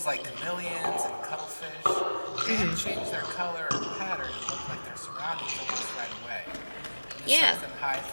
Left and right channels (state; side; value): inverted; both; correlation -1.00